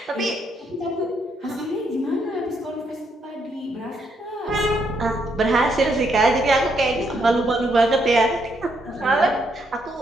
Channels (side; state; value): both; normal; correlation 0.75